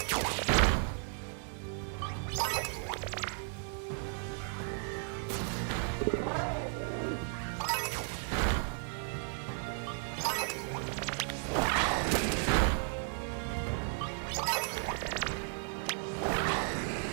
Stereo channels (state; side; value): silent; left; 55 dB below the other